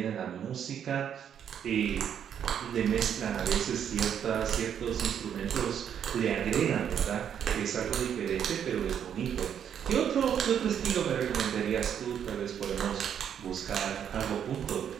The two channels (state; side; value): quieter; left; 8.7 dB